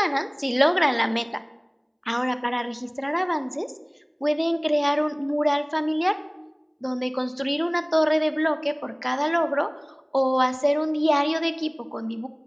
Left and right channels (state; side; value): identical; both; correlation 1.00